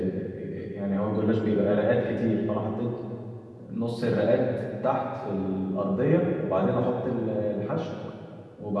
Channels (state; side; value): identical; both; correlation 1.00